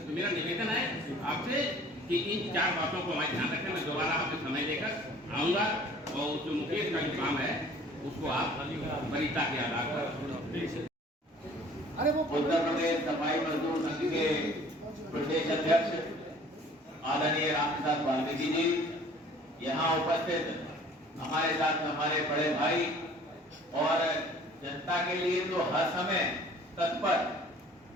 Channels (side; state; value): both; normal; correlation 0.51